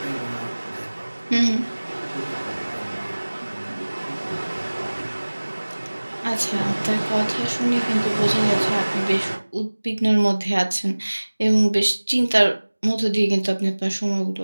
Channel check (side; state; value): both; inverted; correlation -1.00